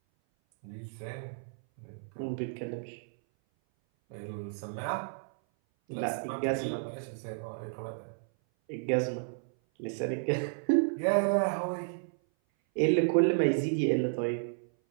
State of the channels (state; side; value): silent; left; 56 dB below the other